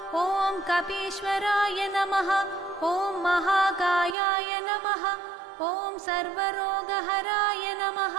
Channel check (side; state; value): left; drops out; at 4.2 s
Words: ఓం కపీశ్వరాయ నమః ఓం మహాకాయాయ నమః ఓం సర్వరోగహరాయ నమః